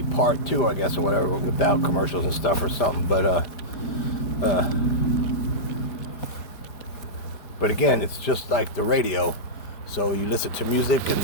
part too, I guess, or whatever, without commercials and stuff or something. But again, it's just like the radio. So you listen to music and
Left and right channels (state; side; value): late; right; 5.0 ms